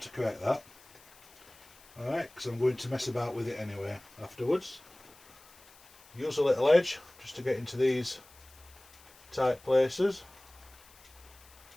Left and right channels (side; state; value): left; noise; hiss, 24 dB below the sound